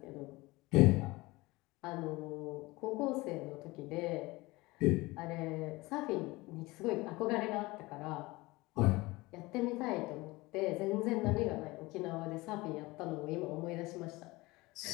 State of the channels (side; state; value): right; quieter; 21.6 dB